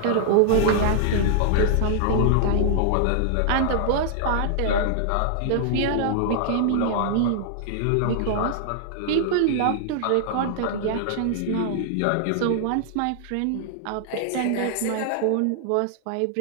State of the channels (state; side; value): different; both; correlation -0.01